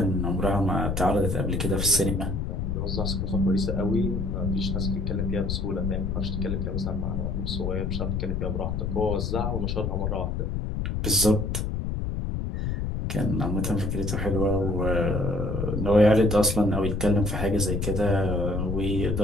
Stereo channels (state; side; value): noise; left; rumble, 1 dB below the sound